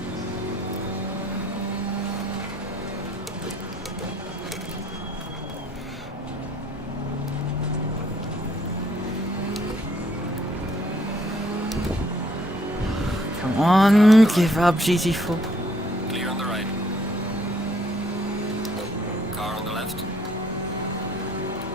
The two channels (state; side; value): normal; both; correlation 0.64